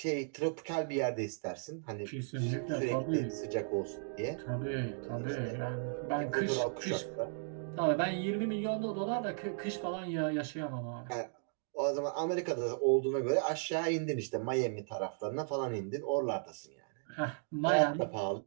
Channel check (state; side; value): silent; left; digital silence